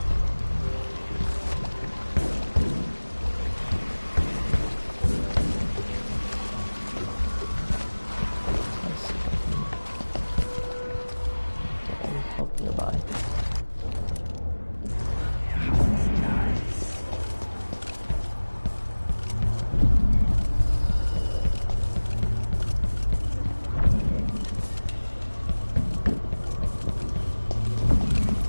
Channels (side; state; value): both; inverted; correlation -1.00